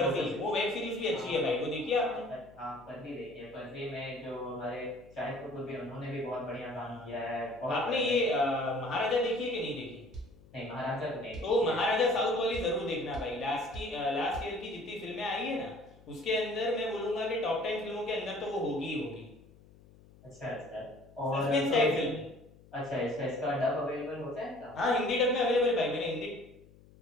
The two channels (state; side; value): noise; left; hum, 24 dB below the sound